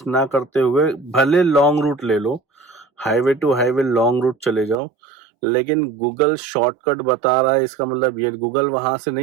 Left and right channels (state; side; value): drops out; left; at 4.8 s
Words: ना करते हुए भले लॉन्ग रूट ले लो, highway to highway long route चले जाओ, लेकिन गूगल शॉर्टकट बता रहा है इसका मतलब ये गूगल वहां से